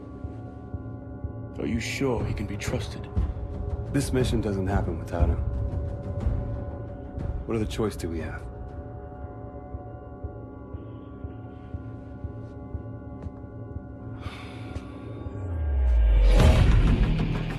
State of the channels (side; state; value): both; identical; correlation 1.00